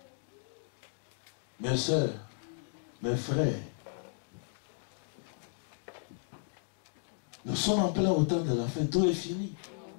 Mes soeurs, mes frères, nous sommes en plein au temps de la fin. Tout est fini.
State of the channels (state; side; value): silent; right; digital silence